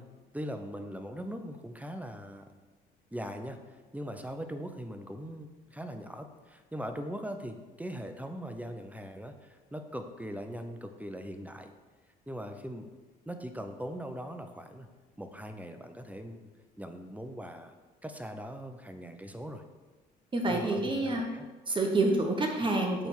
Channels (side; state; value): both; normal; correlation 0.68